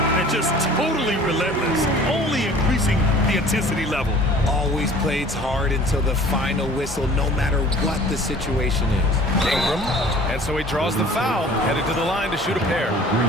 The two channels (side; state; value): both; normal; correlation 0.48